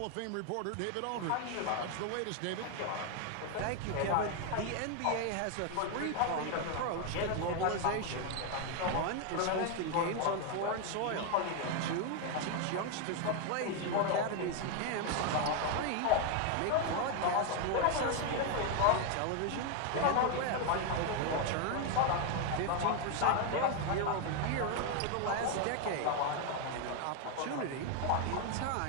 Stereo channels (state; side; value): different; both; correlation 0.01